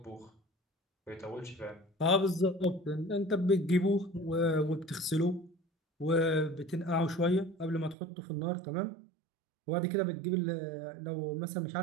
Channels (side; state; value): left; drops out; at 8.0 s